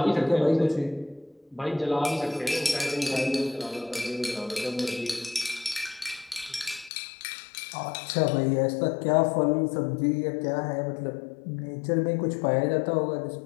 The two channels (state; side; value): drops out; right; at 6.9 s